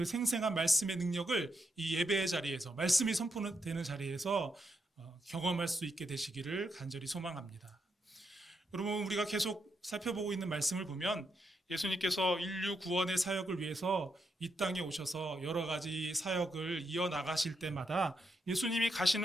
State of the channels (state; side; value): normal; both; correlation 0.81